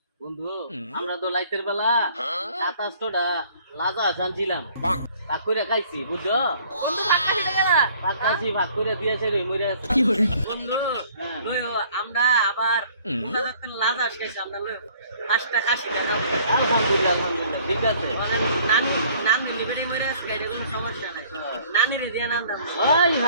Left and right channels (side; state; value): both; inverted; correlation -0.56